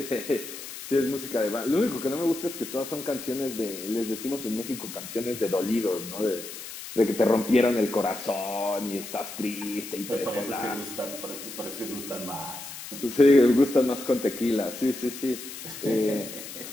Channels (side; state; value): left; noise; hiss, 11 dB below the sound